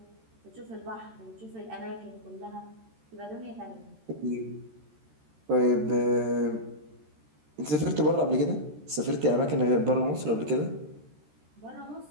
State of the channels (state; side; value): late; left; 13 ms